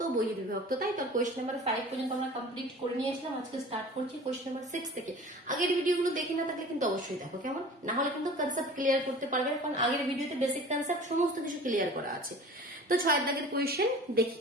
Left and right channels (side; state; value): both; normal; correlation 0.42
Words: ও বহির্বিভক্ত, তাই তো কোয়েশ্চেন নাম্বার 5 পর্যন্ত আমরা কমপ্লিট করে নিয়েছিলাম। আজকে স্টার্ট করছি কোয়েশ্চেন নাম্বার 6 থেকে। আগের ভিডিওগুলো দেখে না থাকলে কিন্তু অবশ্যই দেখো, কেমন? না হলে কিন্তু কনসেপ্ট ক্লিয়ার করতে পারবে, কারণ আগের ভিডিওতে বেসিক কনসেপ্ট সমস্ত কিছু ক্লিয়ার করা আছে। তো 6 দাগের কোয়েশ্চেন দেখি